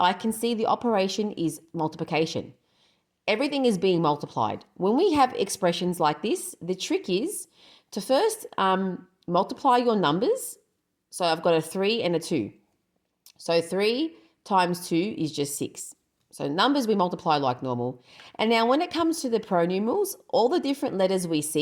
can see the operation is multiplication. Everything is being multiplied. When we have expressions like this, the trick is to first multiply your numbers. So I've got a 3 and a 2. So 3 times 2 is just 6. So numbers we multiply like normal. And now when it comes to the pronumerals, all the different letters we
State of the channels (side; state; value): both; identical; correlation 1.00